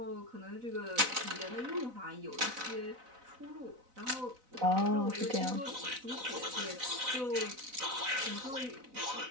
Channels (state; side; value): late; left; 4.0 ms